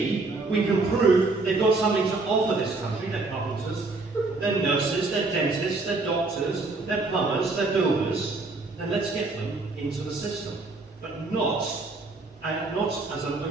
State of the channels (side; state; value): left; quieter; 3.5 dB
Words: we can prove they've got something to offer this country, they're carpenters, they're nurses, they're dentists, they're doctors, they're plumbers, they're builders, then let's get them into the system. But not as an